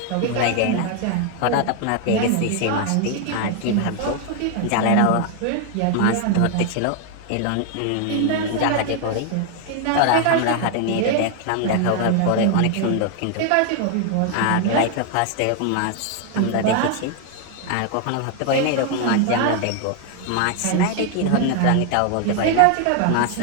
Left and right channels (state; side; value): different; both; correlation 0.01